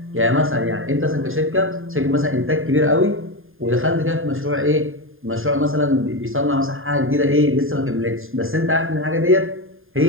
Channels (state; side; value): late; left; 0.59 ms